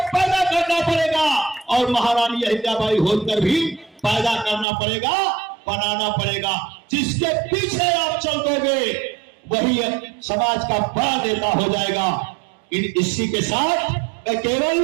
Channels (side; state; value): left; drops out; at 4.7 s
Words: पैदा करना पड़ेगा, और महारानी अहिल्याबाई होलकर भी पैदा करना पड़ेगा, बनाना पड़ेगा। जिसके पीछे आप चल दोगे वही समाज का बड़ा नेता हो जाएगा। इसी के साथ मैं